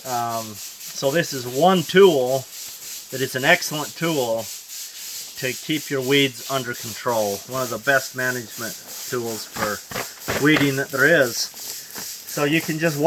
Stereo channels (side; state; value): both; identical; correlation 1.00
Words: So this is one tool that is an excellent tool to keep your weeds under control. One of the best management tools for weeding that there is. So you can just